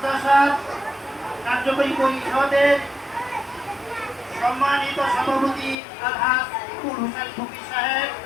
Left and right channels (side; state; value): right; drops out; at 5.8 s